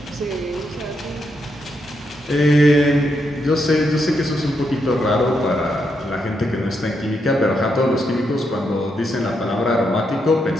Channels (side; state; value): both; normal; correlation 0.81